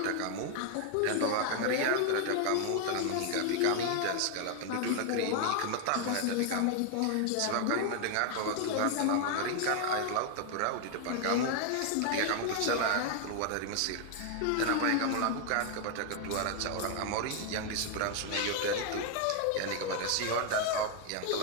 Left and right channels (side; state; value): both; different; correlation 0.00